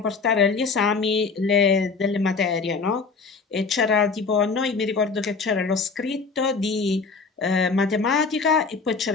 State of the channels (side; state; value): right; quieter; 4.7 dB